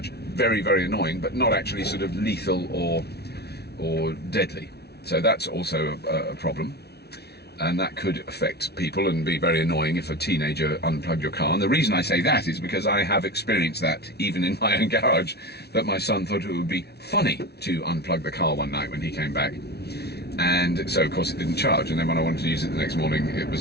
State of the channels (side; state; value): right; late; 0.48 ms